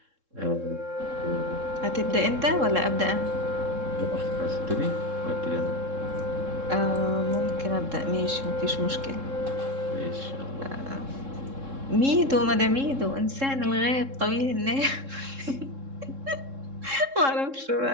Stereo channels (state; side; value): late; left; 3.7 ms